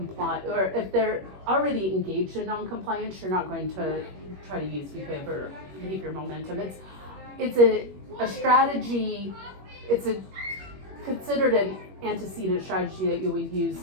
or if they're already engaged in non-compliance, you're not going to try to use behavior momentum. It's a strategy. It's considered an antecedent strategy that you would use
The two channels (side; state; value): left; late; 21 ms